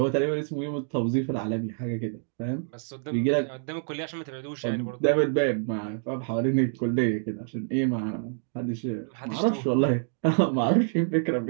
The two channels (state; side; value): silent; left; digital silence